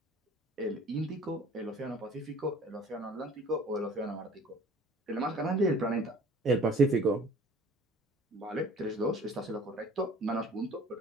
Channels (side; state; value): both; normal; correlation 0.50